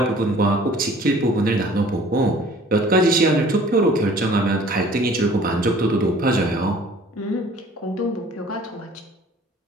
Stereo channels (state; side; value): normal; both; correlation 0.51